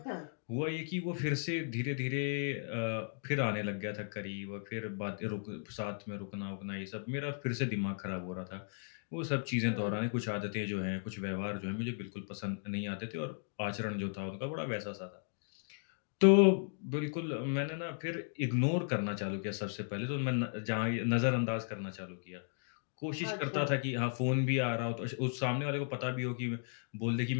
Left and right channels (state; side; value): silent; right; digital silence